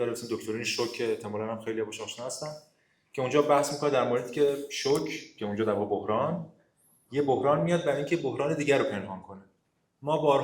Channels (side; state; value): both; identical; correlation 1.00